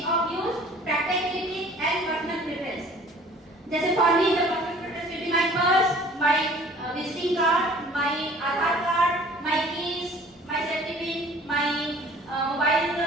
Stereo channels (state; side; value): normal; both; correlation 0.51